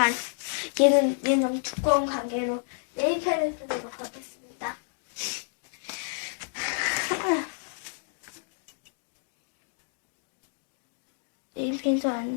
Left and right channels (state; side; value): silent; right; digital silence